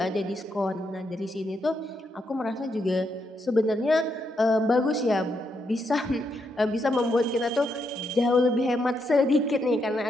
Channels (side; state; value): both; normal; correlation 0.80